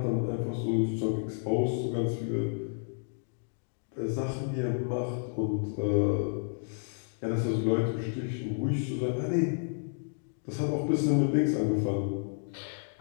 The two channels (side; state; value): right; silent; digital silence